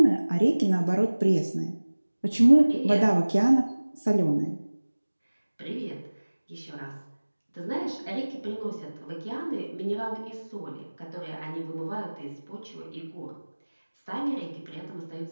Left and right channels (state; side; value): inverted; both; correlation -1.00